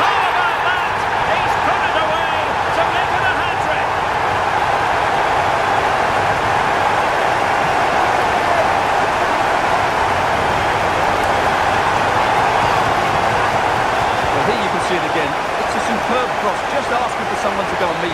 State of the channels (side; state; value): both; identical; correlation 1.00